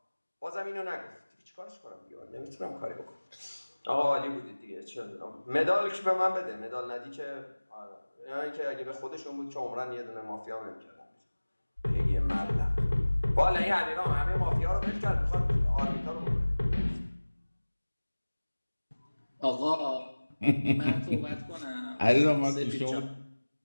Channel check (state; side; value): inverted; both; correlation -1.00